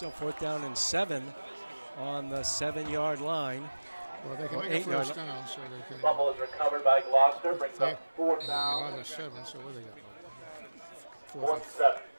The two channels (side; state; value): both; inverted; correlation -1.00